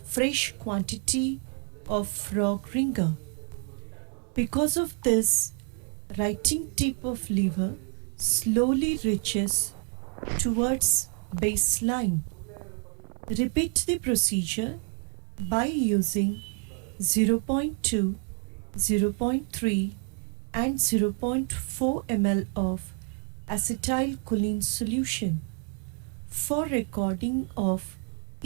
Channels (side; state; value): left; quieter; 38.7 dB